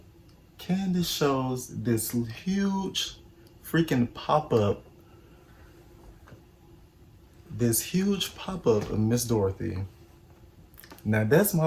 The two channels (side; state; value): both; identical; correlation 1.00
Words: Candace shows this huge freaking pop-up, of Miss Dorothy. Now, that's